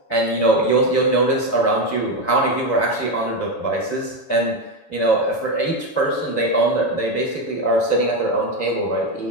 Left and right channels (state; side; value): late; right; 7.1 ms